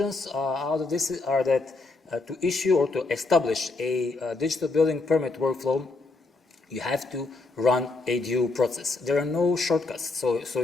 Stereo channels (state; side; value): quieter; right; 3.5 dB